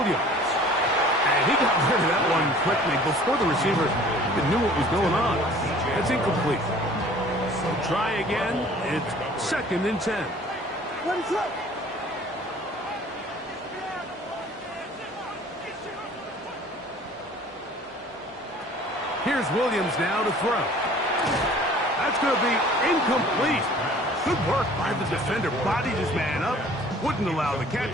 And he got rid of that one quickly before the receiver knew what was going on. That's incomplete. So try again. It's 2nd and 10. Here's Williams now to throw. That's going to be incomplete. Good work by the defender. Bodied his man up. Wouldn't allow the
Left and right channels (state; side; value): normal; both; correlation 0.50